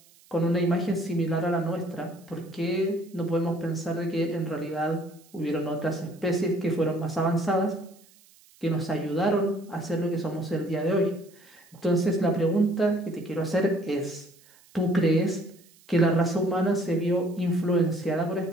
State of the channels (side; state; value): right; noise; hiss, 28 dB below the sound